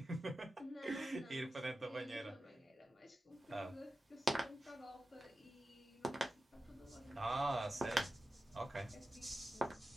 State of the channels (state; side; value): normal; both; correlation 0.93